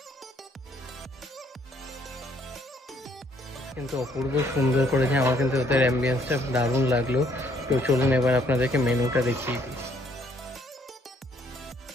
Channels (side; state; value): both; normal; correlation 0.66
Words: কিন্তু অপূর্ব সুন্দর করেছে, আমার কিন্তু ওদের অ্যাম্বিয়েন্সটা দারুণ লাগলো। তো চলুন এবার আপনাদেরকে মেনুটা দেখিয়ে দিই।